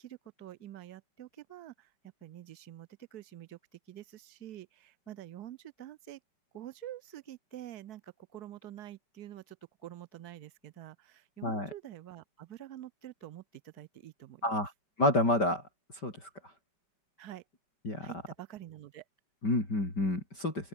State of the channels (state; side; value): late; right; 5.2 ms